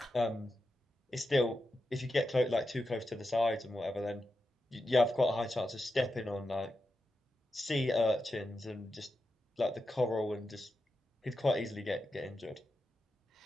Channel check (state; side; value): normal; both; correlation 0.89